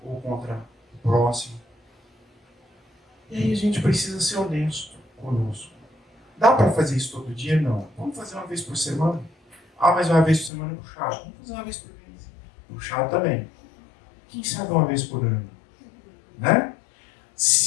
ou contra o próximo. E aí a gente precisa ser honesto conosco. Dá para fazer isso todo dia? Não. Vamos fazer uma vez por semana? Ah, mas uma vez por semana é puxado. Vamos fazer uma vez por mês. Puxado também. Quem sabe uma vez por ano? Né?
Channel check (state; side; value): drops out; right; at 10.5 s